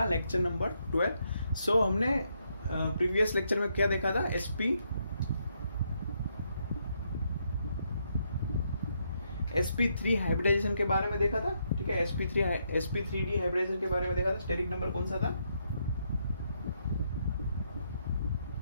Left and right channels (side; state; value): both; inverted; correlation -0.77